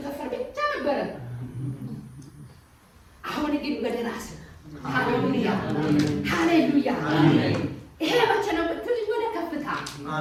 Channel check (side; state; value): both; identical; correlation 1.00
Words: ከንፈር ብቻ ነበረ። አሁን ግን ወደ ራስ ሃሌሉያ! ሃሌሉያ! ይሄ መቼ ነው ብትል ወደ ከፍታ።